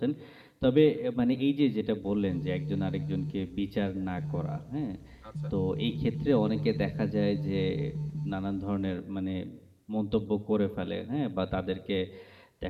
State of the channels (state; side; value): identical; both; correlation 1.00